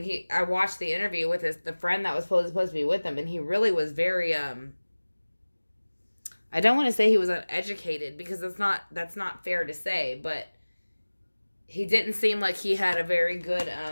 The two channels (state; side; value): inverted; both; correlation -1.00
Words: I watched the interview with the friend that was supposed to be with him, and he really was very, I don't want to say he was uneducated, because that's not fair to say, but he didn't seem like he had a very good,